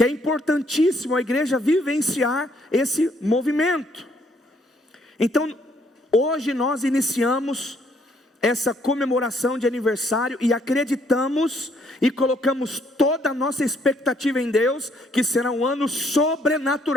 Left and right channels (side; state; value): both; normal; correlation 0.67